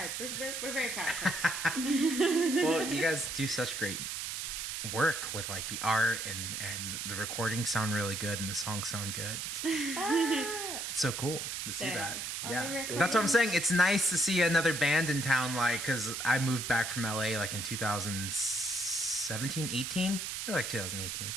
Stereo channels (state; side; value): noise; right; hiss, 4 dB below the sound